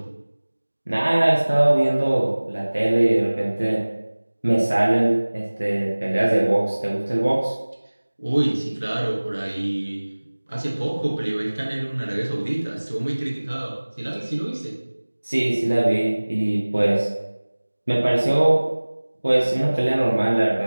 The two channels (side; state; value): both; inverted; correlation -1.00